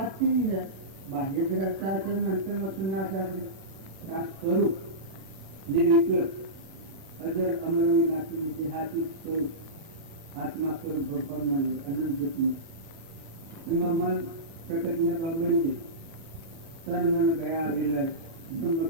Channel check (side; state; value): left; late; 37 ms